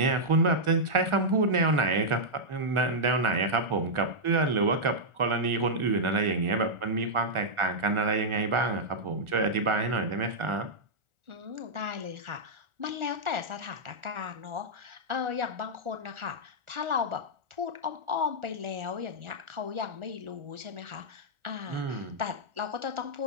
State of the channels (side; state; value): left; late; 1.4 ms